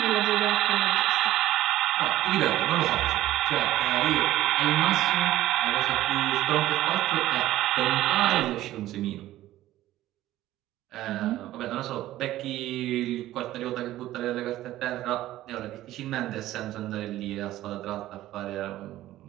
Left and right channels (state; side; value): quieter; left; 14.7 dB